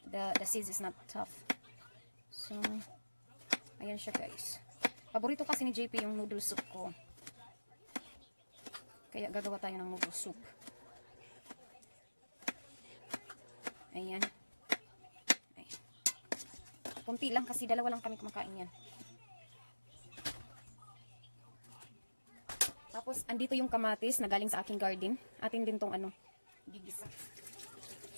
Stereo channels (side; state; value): both; inverted; correlation -1.00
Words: The seeds is not tough. So, ayan siya guys. Paborito kasi ni JP yung noodle soup ko. Kaya gagawa tayo ng noodle soup. Ayan. Ay. Kunti lang kasi dalawa lang kami kumakain yan. Tapos, andito yung kamatis na galing sa aking garden. Atin din tong gigisa.